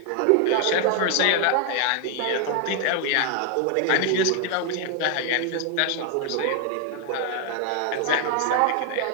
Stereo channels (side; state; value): both; different; correlation 0.00